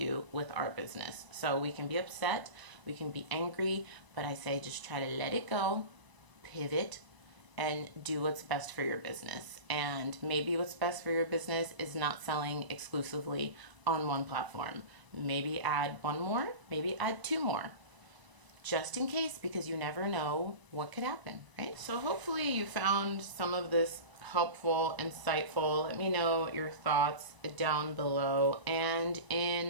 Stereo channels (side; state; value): left; late; 1.0 ms